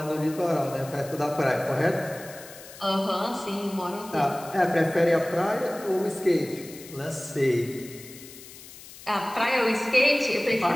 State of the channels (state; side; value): noise; left; hiss, 17 dB below the sound